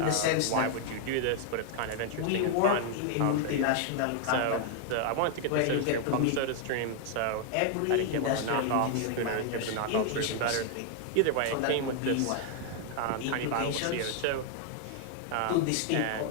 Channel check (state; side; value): different; both; correlation 0.00